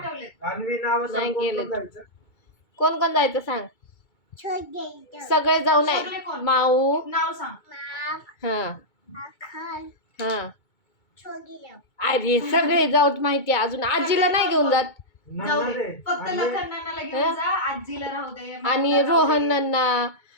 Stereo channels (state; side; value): late; right; 2.2 ms